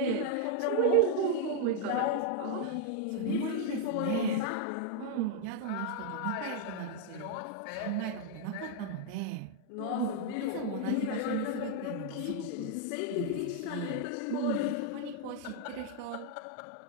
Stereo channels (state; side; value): different; both; correlation 0.00